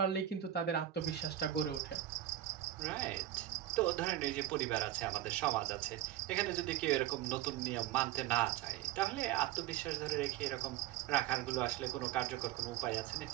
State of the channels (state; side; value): quieter; left; 12.7 dB